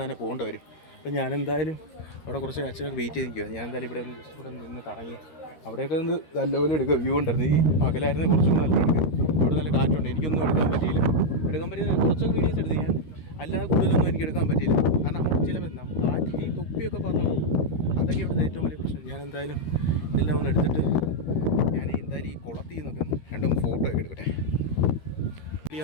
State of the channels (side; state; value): right; late; 13 ms